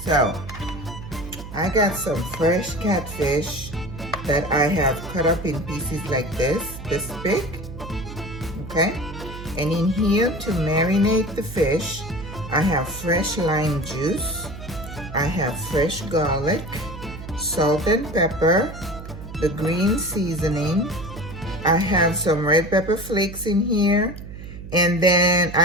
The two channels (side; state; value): right; noise; hum, 12 dB below the sound